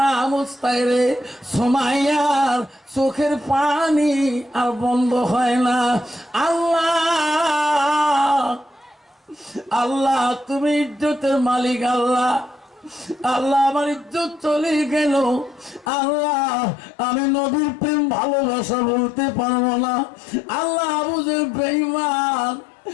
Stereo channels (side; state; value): right; drops out; at 15.9 s